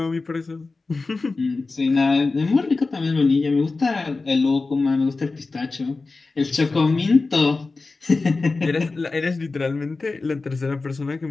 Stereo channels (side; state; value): right; quieter; 3.8 dB